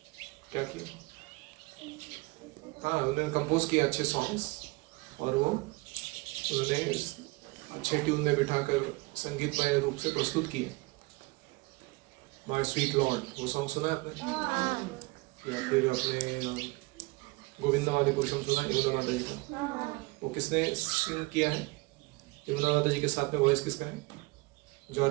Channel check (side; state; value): left; quieter; 24.7 dB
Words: क्या किया? हाँ, उन्होंने कंपोज किया अच्छे सॉन्ग्स, और वो उन्होंने अच्छे ट्यून में बिठाकर संगीतमय रूप से प्रस्तुत किए। माय स्वीट लॉर्ड, वो सॉन्ग सुना है आपने? या फिर आपने गोविंदावादी पुरुषम सुना यमुना माता जी का? वो किसने सिंग किया है? यमुना माता जी के साथ में वॉइस किसका है?